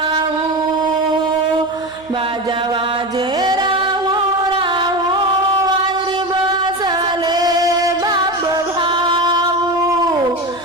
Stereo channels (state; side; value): noise; right; hum, 27 dB below the sound